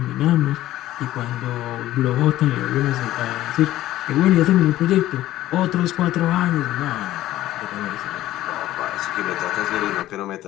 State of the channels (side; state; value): right; quieter; 14.6 dB